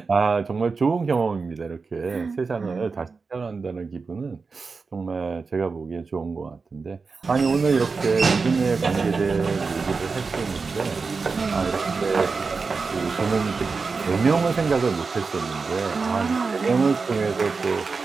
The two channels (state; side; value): quieter; left; 4.6 dB